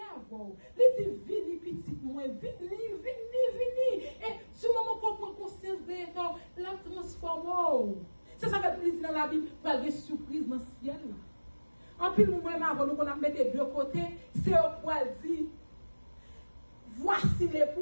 avant. Il dit, vini, petit, moi, vini. Et sur le moment qu'on prend conscience de l'État, la transforme. C'est ça que plaisir dans la Bible, pour avoir des surprises dans le ciel. En plus, nous-mêmes, avant nous, qu'on a mis des deux côtés, c'est au poil dit, voici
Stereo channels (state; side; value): inverted; both; correlation -1.00